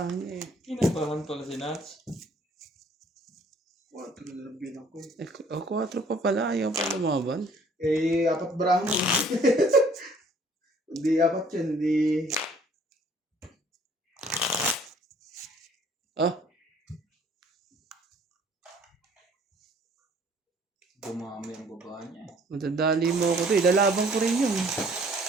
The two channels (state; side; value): normal; both; correlation 0.57